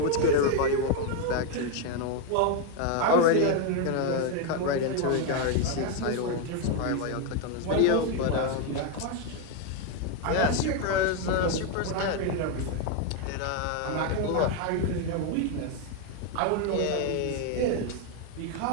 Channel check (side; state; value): both; different; correlation 0.01